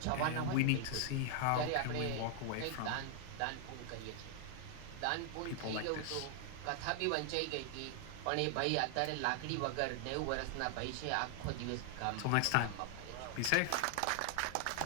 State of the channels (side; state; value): both; different; correlation 0.00